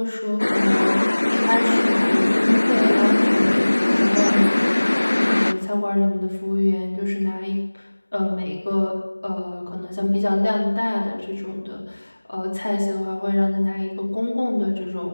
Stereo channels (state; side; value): inverted; both; correlation -1.00